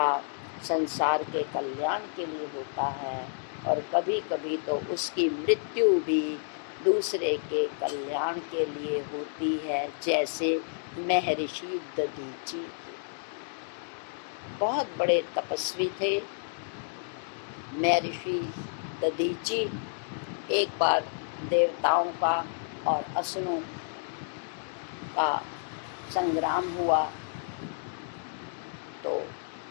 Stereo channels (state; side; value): silent; right; digital silence